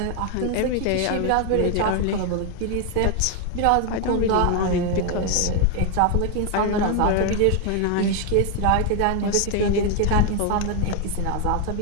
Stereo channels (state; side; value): different; both; correlation 0.01